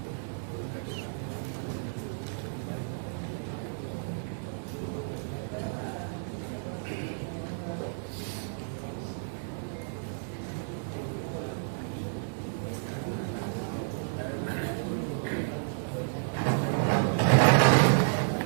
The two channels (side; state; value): left; silent; digital silence